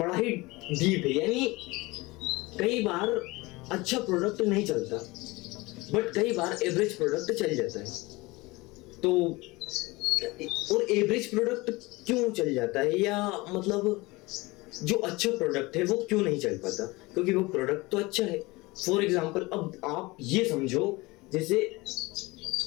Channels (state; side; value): quieter; right; 22.7 dB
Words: ही डीप है। यानी कई बार अच्छा प्रोडक्ट नहीं चलता, बट कई बार एवरेज प्रोडक्ट चल जाता है। तो और एवरेज प्रोडक्ट क्यों चल जाता है, या मतलब जो अच्छा प्रोडक्ट है वो क्यों नहीं चल पाता? क्योंकि वो प्रोडक्ट तो अच्छा है। फॉर एग्जाम्पल, अब आप ये समझो जैसे